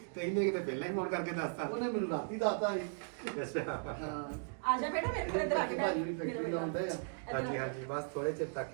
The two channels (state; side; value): silent; left; digital silence